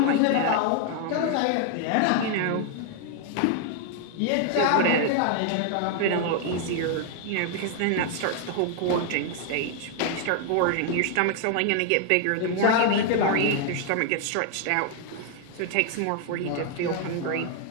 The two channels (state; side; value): different; both; correlation 0.00